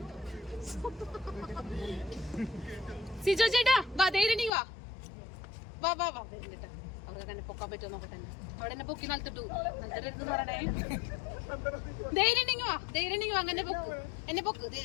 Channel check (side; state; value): right; drops out; at 4.5 s